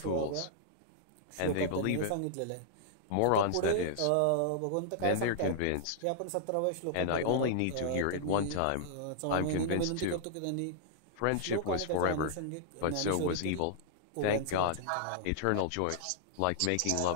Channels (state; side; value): different; both; correlation -0.01